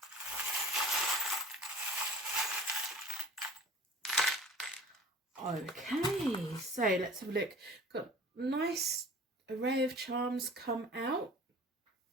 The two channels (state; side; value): normal; both; correlation 0.43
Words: Okay, so let's have a look. Got a nice array of charms come out.